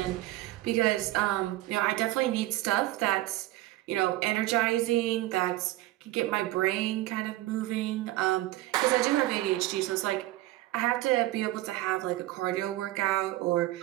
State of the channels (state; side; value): quieter; left; 16.7 dB